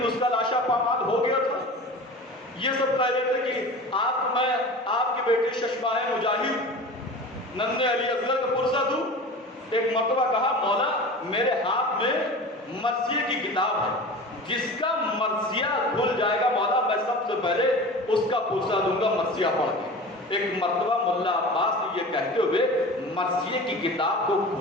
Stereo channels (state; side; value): normal; both; correlation 0.35